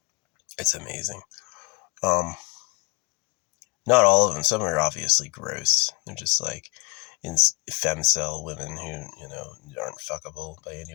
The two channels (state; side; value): quieter; right; 29.3 dB